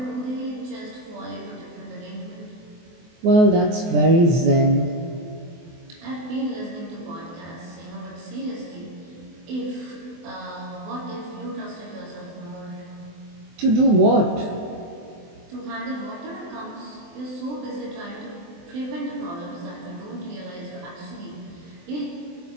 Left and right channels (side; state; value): left; late; 24 ms